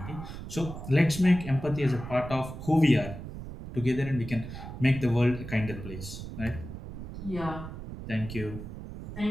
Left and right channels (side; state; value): right; noise; rumble, 10 dB below the sound